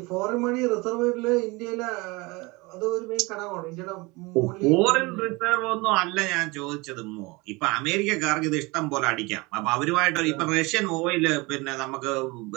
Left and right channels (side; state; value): left; quieter; 24.6 dB